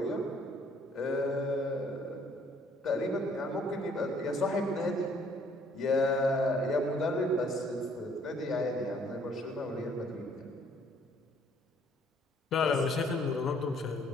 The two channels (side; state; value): both; normal; correlation 0.62